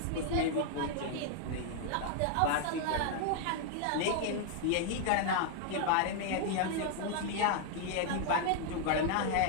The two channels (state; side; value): different; both; correlation 0.00